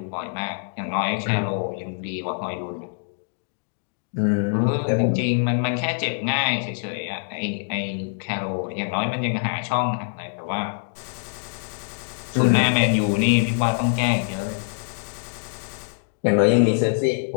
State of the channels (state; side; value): silent; right; digital silence